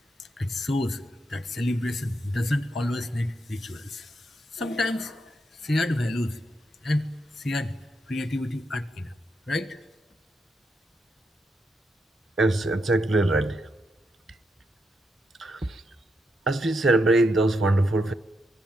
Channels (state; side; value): normal; both; correlation 0.82